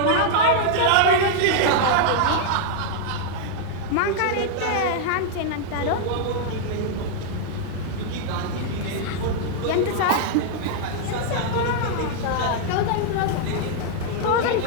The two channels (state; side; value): different; both; correlation -0.01